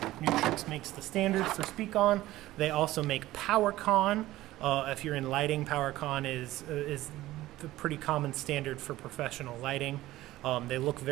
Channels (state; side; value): quieter; left; 16.2 dB